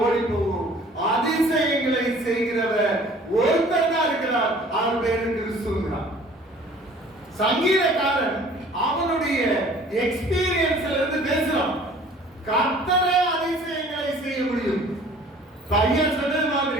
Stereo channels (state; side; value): normal; both; correlation 0.51